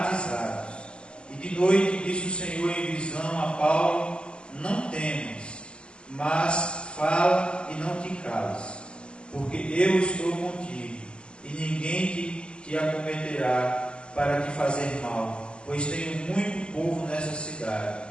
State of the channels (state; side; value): late; right; 0.051 ms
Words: E de noite disse o Senhor em visão a Paulo: não temas, mas fala e não te cales, porque eu estou contigo, e ninguém te acometerá para te fazer mal, pois tenho muito povo nessa cidade.